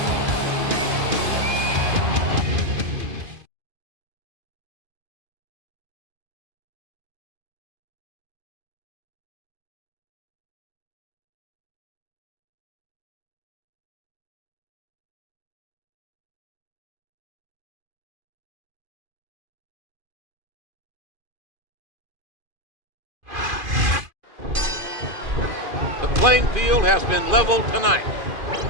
The playing field has been leveled tonight.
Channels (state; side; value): late; left; 2.5 ms